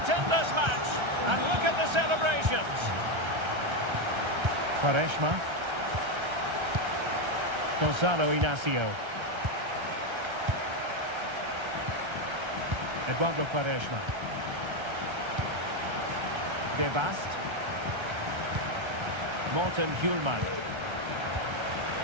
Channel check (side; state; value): left; late; 1.3 ms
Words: in this match. And look at the celebrations. Quaresma. Gonzalo Inacio. Eduardo Quaresma. De Bast. Morten Hjulman.